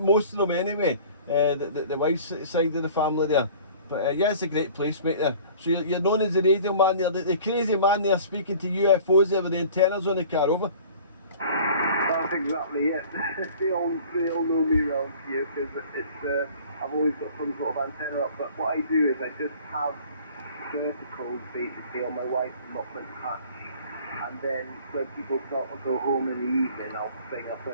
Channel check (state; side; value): inverted; both; correlation -0.47